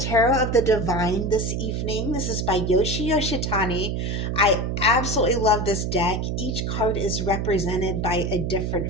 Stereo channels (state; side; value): noise; right; hum, 1 dB below the sound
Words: of the Divine this evening. This is by Yoshi Yoshitani. I absolutely love this deck. Each card is represented by a